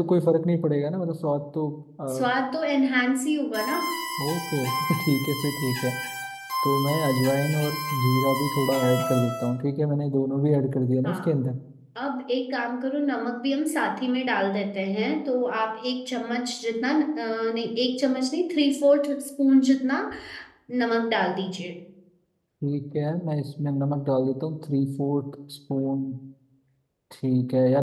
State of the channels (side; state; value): both; identical; correlation 1.00